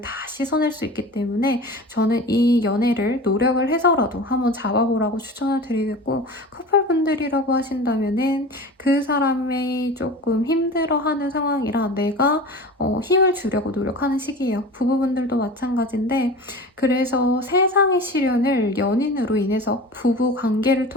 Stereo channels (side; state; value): both; normal; correlation 0.34